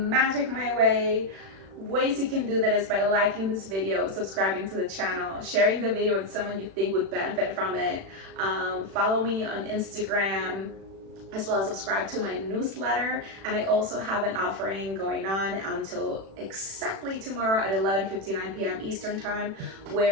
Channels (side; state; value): left; late; 36 ms